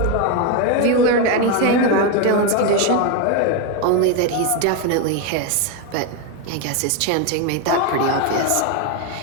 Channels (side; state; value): both; different; correlation 0.02